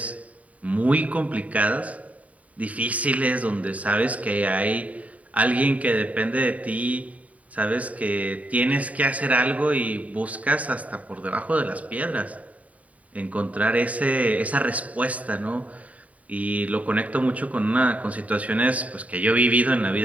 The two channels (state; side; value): late; left; 0.069 ms